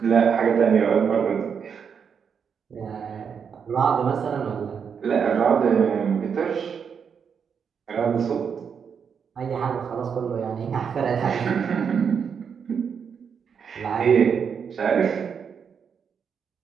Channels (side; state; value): left; quieter; 6.8 dB